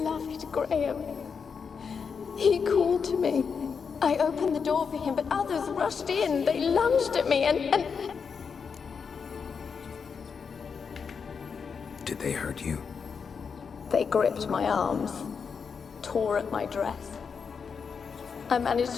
Graham. He called to me. I opened the door for him, but others rushed in. They lunged at me and... Did they hurt you? They gripped my arms, tore at my dress. I managed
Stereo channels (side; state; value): right; quieter; 6.0 dB